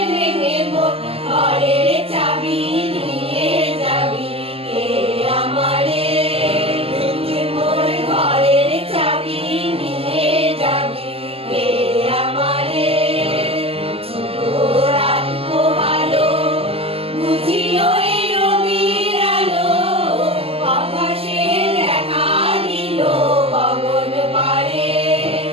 ভেঙে মোর ঘরের চাবি নিয়ে যাবি কে আমারে, ভেঙে মোর ঘরের চাবি নিয়ে যাবি কে আমারে। রাত পোহালো বুঝি ওই রবির আলো, আকাশে দেখা দিল গগন পারে।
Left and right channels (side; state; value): left; late; 0.28 ms